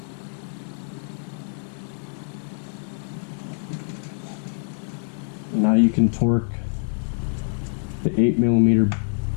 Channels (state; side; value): silent; right; 62 dB below the other